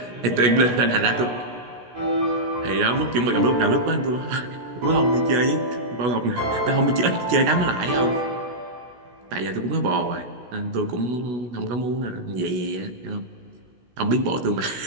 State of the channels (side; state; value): left; late; 16 ms